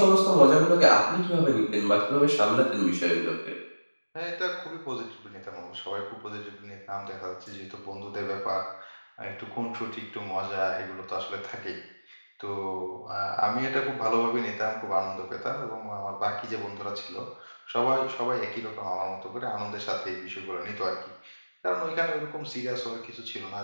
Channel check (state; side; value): inverted; both; correlation -1.00